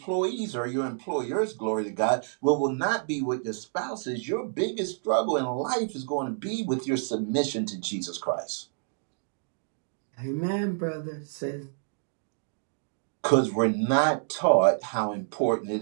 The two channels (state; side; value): silent; left; digital silence